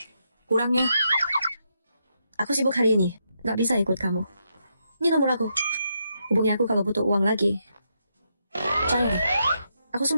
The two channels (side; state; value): both; inverted; correlation -0.80